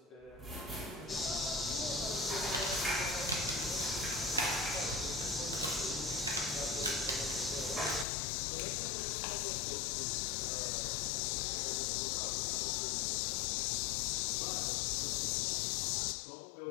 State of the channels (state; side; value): drops out; right; at 8.1 s